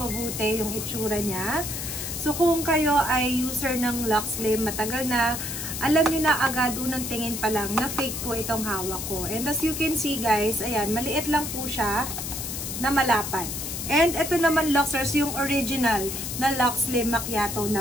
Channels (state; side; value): noise; left; hiss, 5 dB below the sound